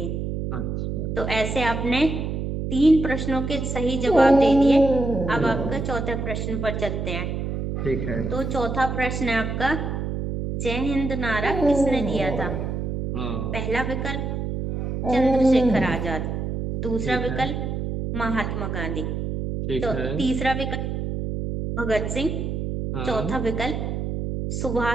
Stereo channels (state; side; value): noise; right; hum, 3 dB below the sound